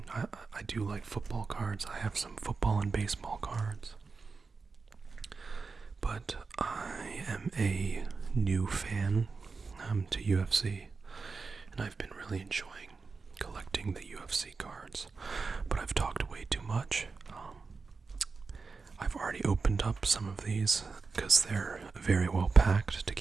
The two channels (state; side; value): quieter; left; 4.5 dB